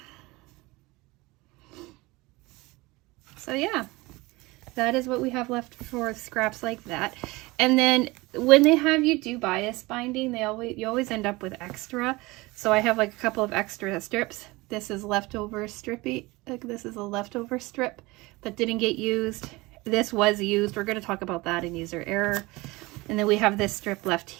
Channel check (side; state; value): left; quieter; 22.2 dB